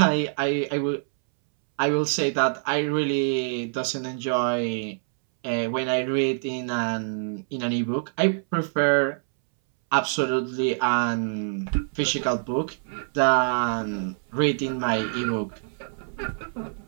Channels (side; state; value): left; silent; 61 dB below the other